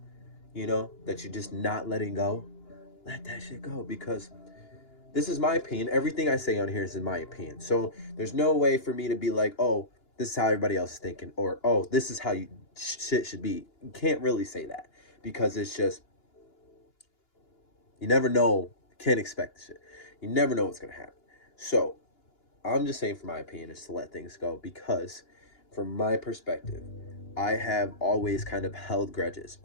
that you're just not letting go, let that shit go. Because this is my opinion. Everything I say on here is in my opinion. So there's no way for me to be like, oh, this is how everybody else is thinking, or oh, this is how shit should be. You can't really say that because it's just, you never know. You can't expect the shit. You never know what's gonna happen. So I'm just saying, for my opinion, is to let things go because, from my perspective, I have always kind of held grudges,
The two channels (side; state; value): right; late; 2.9 ms